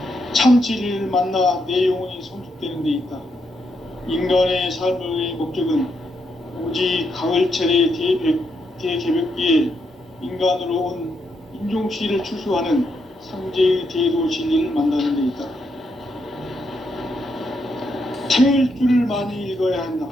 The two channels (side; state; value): both; normal; correlation 0.79